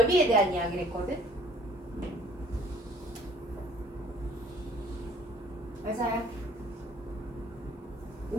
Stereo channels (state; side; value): normal; both; correlation 0.56